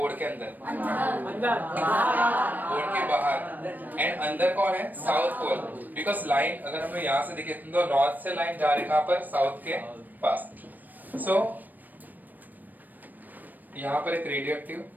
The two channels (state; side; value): late; left; 0.086 ms